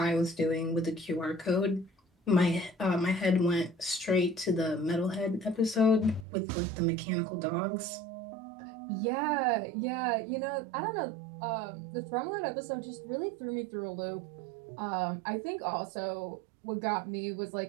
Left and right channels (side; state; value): left; drops out; at 6.2 s